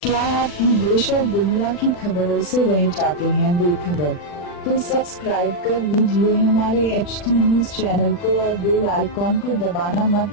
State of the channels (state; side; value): late; right; 40 ms